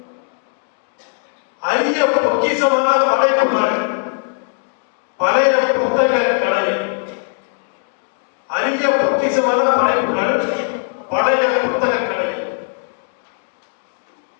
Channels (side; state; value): right; silent; digital silence